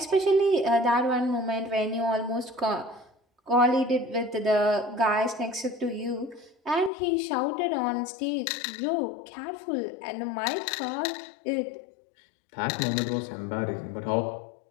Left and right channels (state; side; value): drops out; right; at 6.9 s